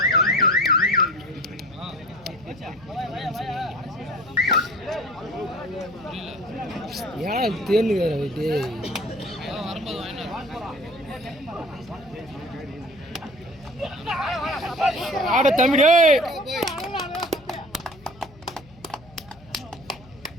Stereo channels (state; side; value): noise; left; hum, 23 dB below the sound